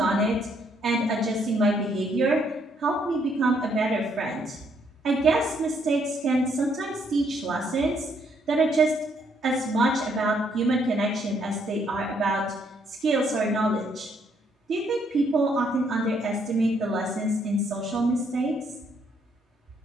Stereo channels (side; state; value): both; normal; correlation 0.70